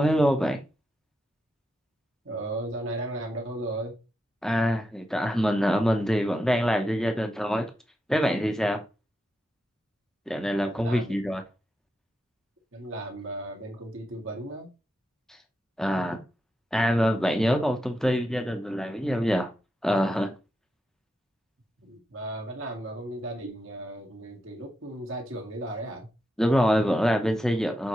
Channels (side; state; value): both; normal; correlation 0.86